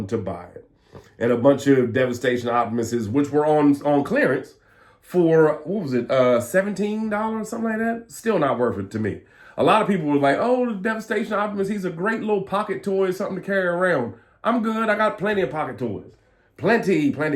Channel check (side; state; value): both; identical; correlation 1.00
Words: to buy it. And a bunch of Devastation Optimuses, which were on clearance for, what was it, $17, something like that? Still not worth it to me. A lot of people were like, oh, the Devastation Optimus, he's a great little pocket toy, something to carry around. I'm good. I got plenty of pocket toys. Plenty.